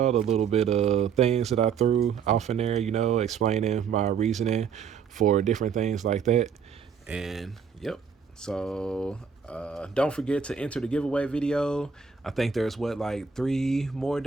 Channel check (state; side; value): quieter; left; 6.6 dB